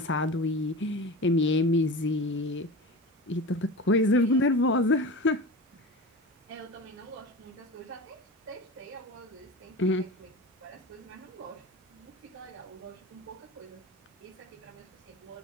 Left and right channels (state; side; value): normal; both; correlation 0.31